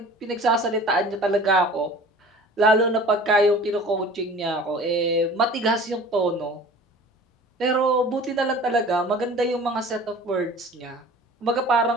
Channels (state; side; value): normal; both; correlation 0.44